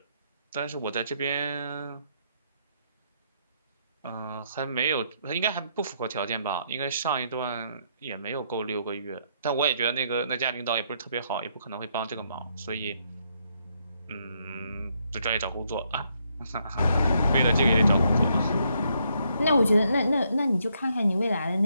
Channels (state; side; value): inverted; both; correlation -0.74